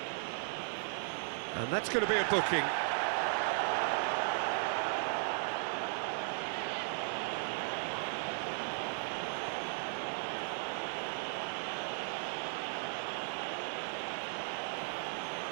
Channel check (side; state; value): left; silent; 53 dB below the other